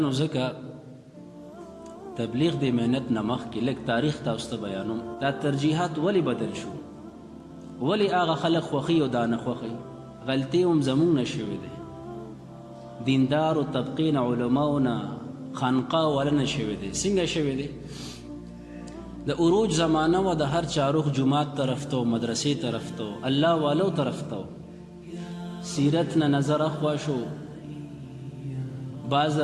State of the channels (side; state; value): both; identical; correlation 1.00